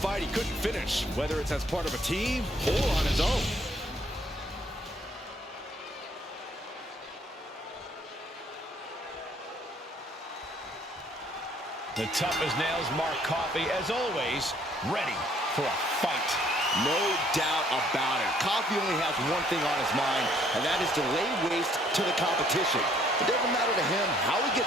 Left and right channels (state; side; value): normal; both; correlation 0.63